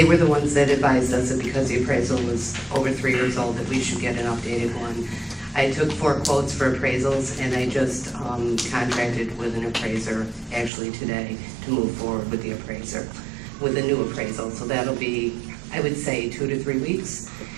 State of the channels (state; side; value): drops out; left; at 10.7 s